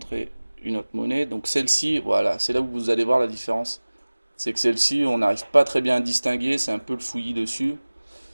une autre monnaie. Donc celle-ci, voilà, c'est là où vous allez voir la différence. C'est que celle-ci, on n'arrive pas très bien à distinguer, c'est un peu le fouillis dessus.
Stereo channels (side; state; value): both; inverted; correlation -1.00